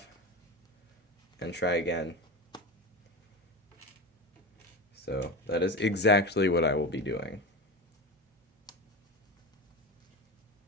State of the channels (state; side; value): normal; both; correlation 0.23